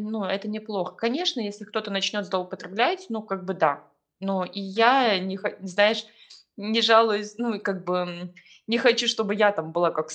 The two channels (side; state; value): both; identical; correlation 1.00